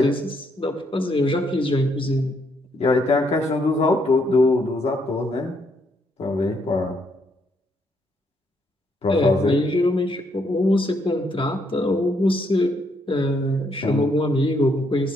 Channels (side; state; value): both; normal; correlation 0.73